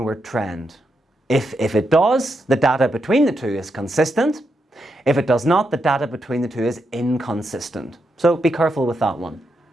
trend? If it does, the data between the two is consistent. If it does not, the data between the two is inconsistent. So be careful with that one.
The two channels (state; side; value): normal; both; correlation 0.83